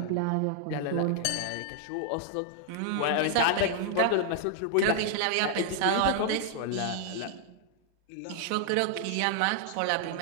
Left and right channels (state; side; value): different; both; correlation 0.00